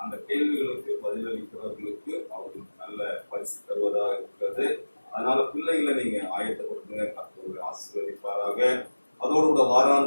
அந்த கேள்விகளுக்கு பதிலளிக்கிறவர்களுக்கு அவர்களுக்கு நல்ல பரிசு தருவதாக இருக்கிறது. அதனால பிள்ளைகளை நீங்க ஆயத்தப்படுத்துங்க, கர்த்தர் ஆசீர்வதிப்பாராக. அதோடு கூட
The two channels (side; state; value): both; inverted; correlation -1.00